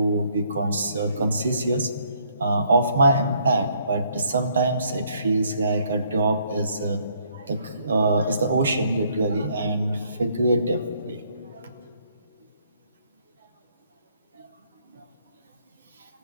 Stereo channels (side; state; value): both; inverted; correlation -0.67